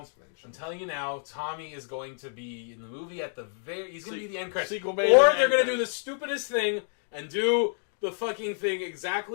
mentioned. I'm telling you now, Tommy is going to be in the movie at the very. He's going to be the end credits. Sequel Or bait they're and going to do end the stupidest thing and do the fucking thing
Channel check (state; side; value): silent; right; digital silence